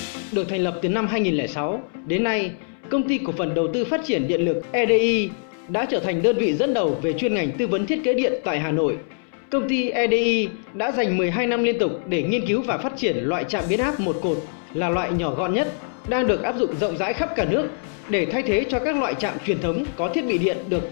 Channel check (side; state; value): right; silent; 63 dB below the other